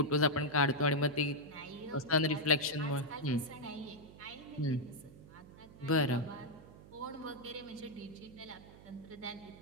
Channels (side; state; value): right; noise; hum, 19 dB below the sound